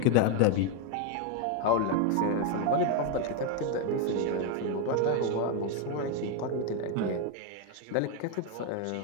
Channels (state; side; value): different; both; correlation 0.01